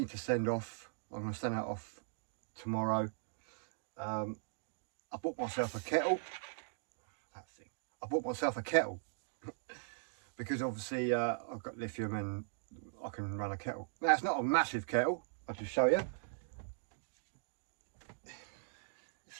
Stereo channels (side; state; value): left; silent; digital silence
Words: to send off, I'm going to send that off tomorrow. I bought myself a kettle. I bought myself a kettle because obviously I've got lithium and I can run a kettle. Now it's not a massive kettle, I'll just show you. It's